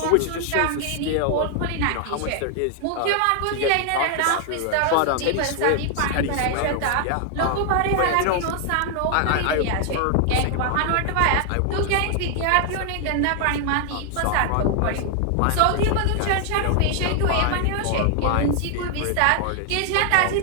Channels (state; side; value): different; both; correlation 0.00